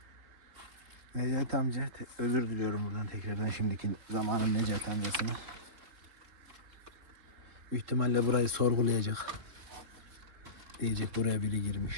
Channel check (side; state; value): left; late; 3.7 ms